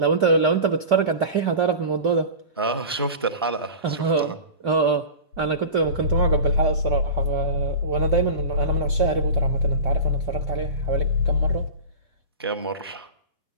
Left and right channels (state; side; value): inverted; both; correlation -0.31